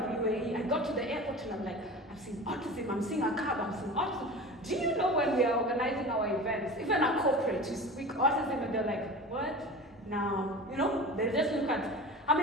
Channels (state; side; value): normal; both; correlation 0.34